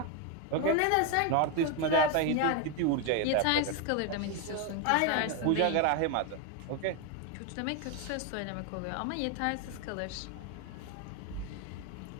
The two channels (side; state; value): both; different; correlation 0.01